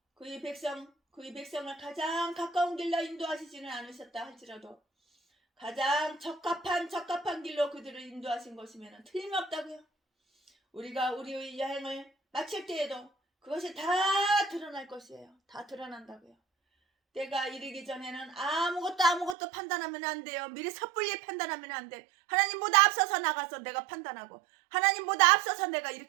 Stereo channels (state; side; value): drops out; left; at 19.4 s